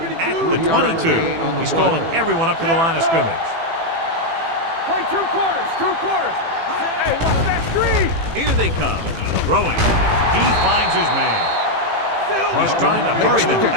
at the 22. He's calling everyone up to the line of scrimmage. Play 2 quarters. 2 quarters. Hey, that's 3. Here they come. Throwing. He finds his man. He's trying to hurry them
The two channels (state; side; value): late; left; 18 ms